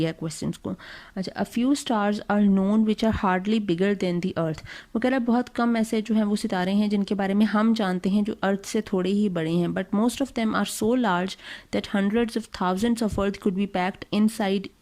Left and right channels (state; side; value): identical; both; correlation 1.00